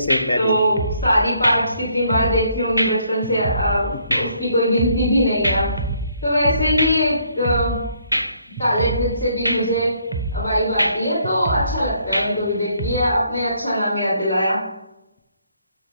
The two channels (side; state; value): both; inverted; correlation -0.68